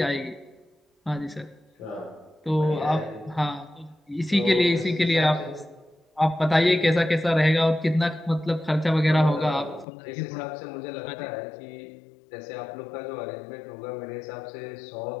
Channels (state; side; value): drops out; right; at 9.9 s